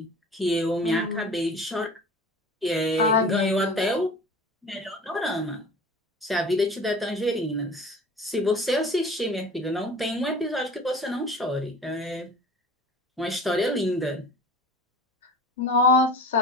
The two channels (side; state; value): both; normal; correlation 0.40